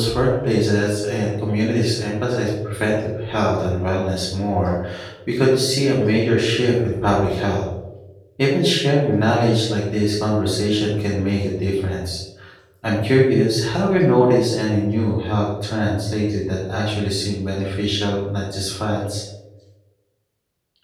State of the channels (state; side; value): identical; both; correlation 1.00